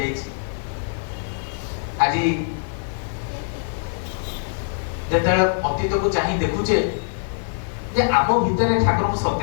आज जेते अतीत को चाही देखुचे जे आम भितर ठाकुर को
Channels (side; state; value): right; silent; 63 dB below the other